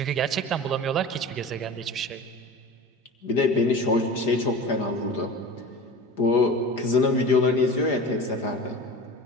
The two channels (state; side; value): normal; both; correlation 0.35